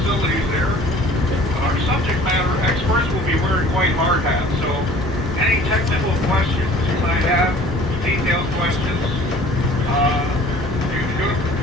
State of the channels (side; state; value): both; normal; correlation 0.49